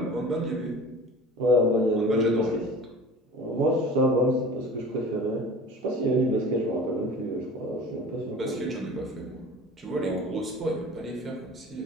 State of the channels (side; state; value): both; normal; correlation 0.40